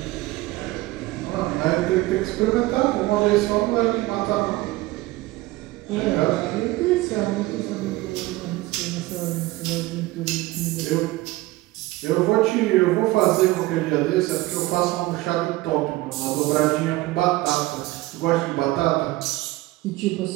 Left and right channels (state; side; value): quieter; left; 19.1 dB